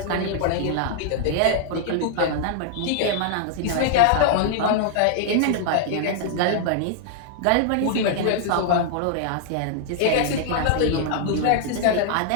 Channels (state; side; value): different; both; correlation -0.01